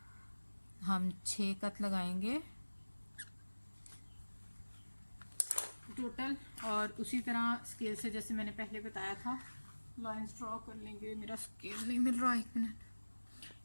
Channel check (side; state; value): both; inverted; correlation -1.00